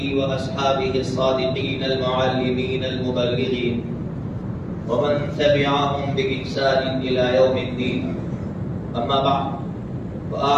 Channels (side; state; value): both; identical; correlation 1.00